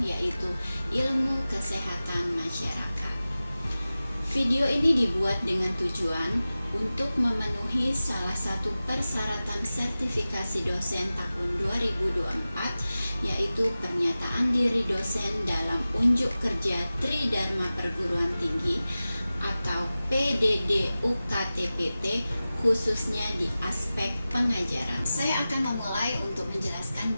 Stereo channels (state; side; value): inverted; both; correlation -0.96